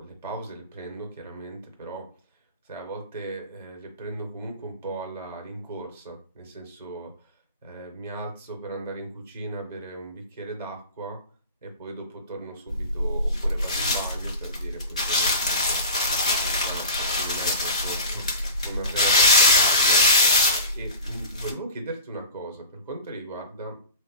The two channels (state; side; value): inverted; both; correlation -0.36